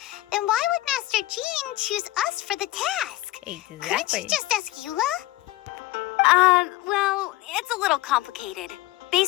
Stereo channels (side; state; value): right; quieter; 17.4 dB